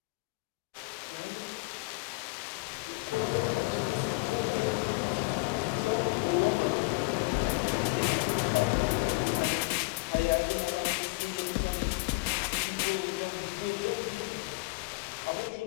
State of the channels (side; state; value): right; quieter; 27.6 dB